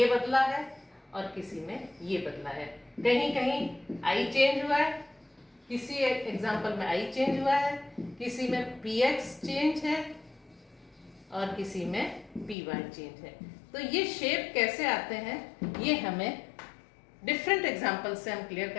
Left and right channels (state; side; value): drops out; right; at 12.6 s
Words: बदला है और किसी में ये बदला है। कहीं कहीं i चेंज हुआ है, किसी एग्जाम्पल में i चेंज हुआ है, किसी में px चेंज है और किसी में py चेंज है। तो ये शेप कैसे आते हैं ये हमें डिफरेंट एग्जाम्पल से हम क्लियर